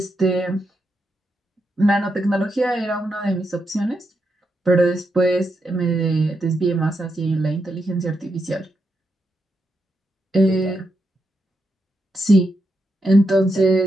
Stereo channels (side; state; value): both; normal; correlation 0.84